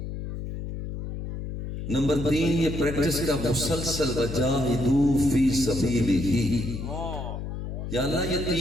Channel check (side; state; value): left; noise; hum, 7 dB below the sound